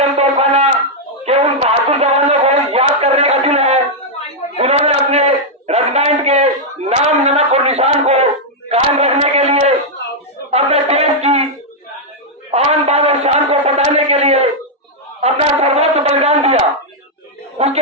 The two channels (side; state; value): both; normal; correlation -0.03